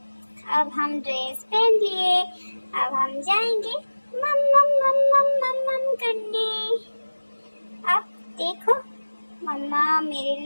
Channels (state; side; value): inverted; both; correlation -1.00